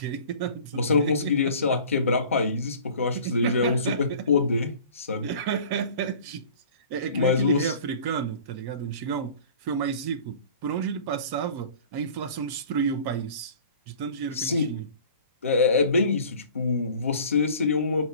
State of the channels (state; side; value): inverted; both; correlation -0.45